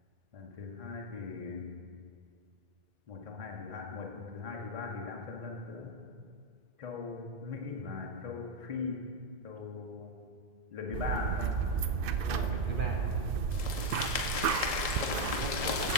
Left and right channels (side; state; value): left; late; 1.7 ms